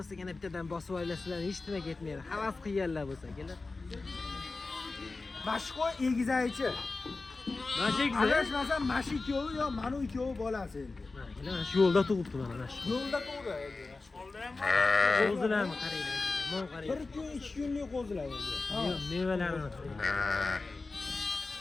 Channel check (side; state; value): right; quieter; 3.7 dB